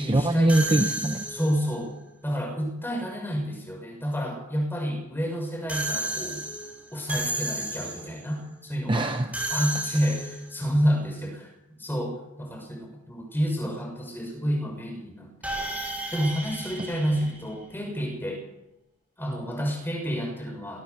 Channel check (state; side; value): normal; both; correlation 0.77